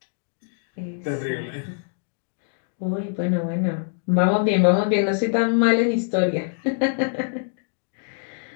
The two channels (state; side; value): silent; right; digital silence